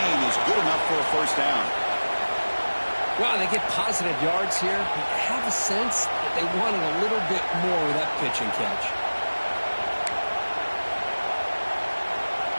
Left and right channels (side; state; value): both; inverted; correlation -1.00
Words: is good enough for a first down. Wow, they get positive yards here. I have a sense that they wanted a little bit more with that pitch and catch.